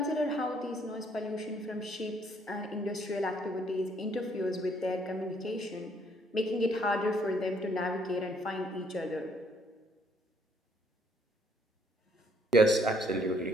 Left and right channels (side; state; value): both; normal; correlation 0.66